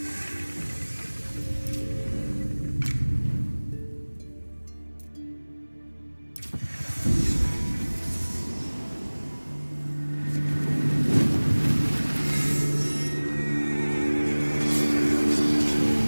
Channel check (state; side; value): inverted; both; correlation -1.00